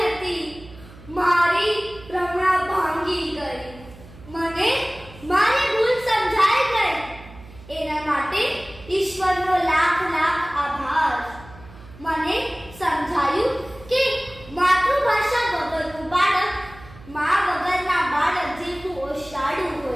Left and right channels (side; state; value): right; noise; hum, 20 dB below the sound